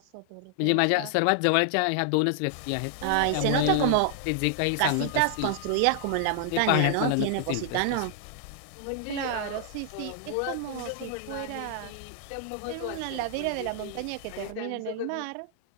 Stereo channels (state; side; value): different; both; correlation -0.01